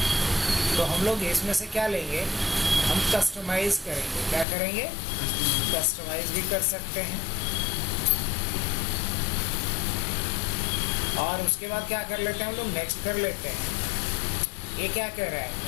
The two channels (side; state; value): right; drops out; at 4.5 s